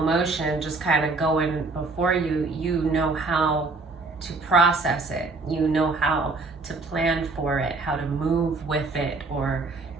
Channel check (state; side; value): quieter; left; 3.7 dB